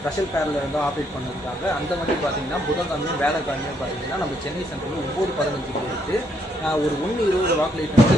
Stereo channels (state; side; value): normal; both; correlation 0.73